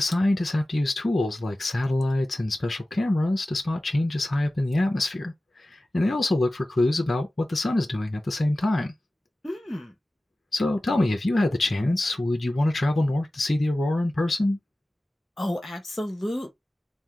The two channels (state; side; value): normal; both; correlation 0.96